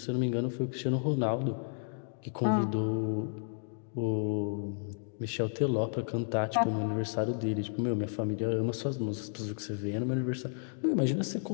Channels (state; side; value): silent; right; digital silence